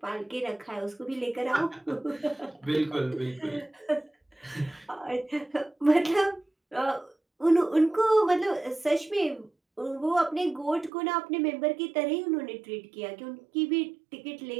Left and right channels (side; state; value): left; drops out; at 10.9 s